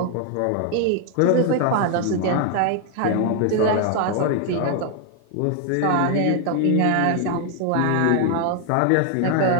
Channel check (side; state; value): both; different; correlation 0.00